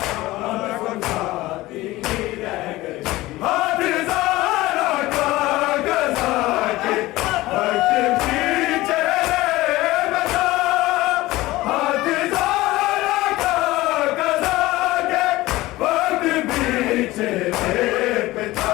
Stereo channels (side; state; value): right; quieter; 18.4 dB